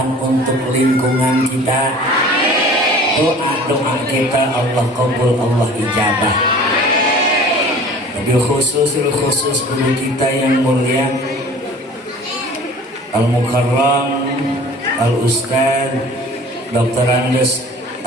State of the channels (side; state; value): both; normal; correlation 0.45